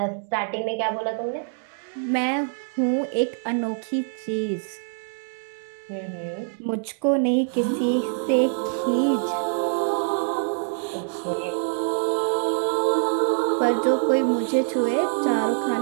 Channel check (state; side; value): silent; left; digital silence